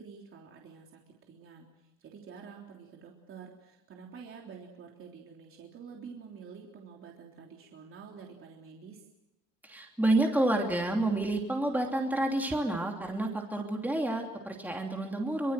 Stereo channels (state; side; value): normal; both; correlation 0.79